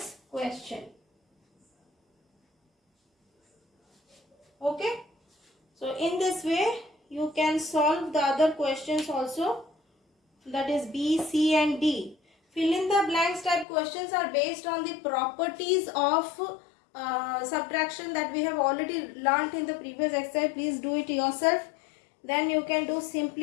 question. Okay. So in this way you can solve the other questions also, that is B, C and D. Fill in the blanks type questions are based on the properties of subtraction that we have already learnt in the previous exercise. Please do it yourself. Then you can do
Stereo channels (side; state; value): right; drops out; at 13.7 s